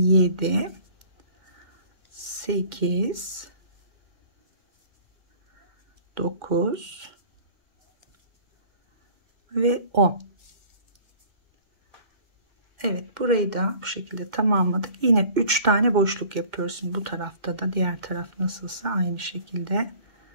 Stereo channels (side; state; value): left; late; 2.1 ms